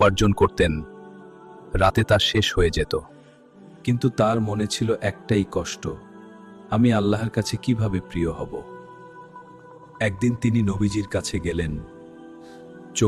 করতেন, রাতে তা শেষ হয়ে যেত। কিন্তু তার মনে ছিল একটাই কষ্ট, আমি আল্লাহর কাছে কিভাবে প্রিয় হব। একদিন তিনি নবীজির কাছে গেলেন,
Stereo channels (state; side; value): identical; both; correlation 1.00